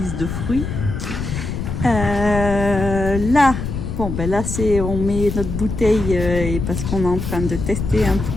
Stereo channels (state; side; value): noise; left; rumble, 4 dB below the sound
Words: de fruits. Là, bon, ben là, on met notre bouteille et parce qu'on est en train de tester un